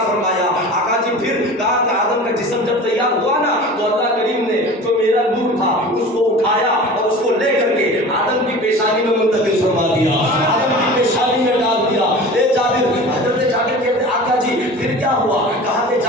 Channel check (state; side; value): normal; both; correlation 0.38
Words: فرمایا۔ آقا جی پھر کہا کہ آدم کا جسم جب تیار ہوا نا تو اللہ کریم نے جو میرا نور تھا اس کو اٹھایا اور اس کو لے کر کے آدم کی پیشانی میں منتقل فرما دیا، آدم کی پیشانی میں ڈال دیا۔ اے جابر حضرت جابر کہتے ہیں آقا جی پھر کیا ہوا؟ کہا کہ